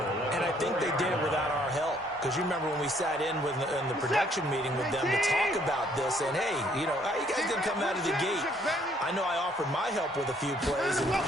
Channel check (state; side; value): normal; both; correlation 0.65